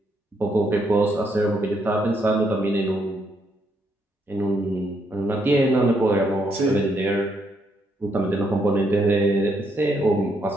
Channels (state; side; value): normal; both; correlation 0.75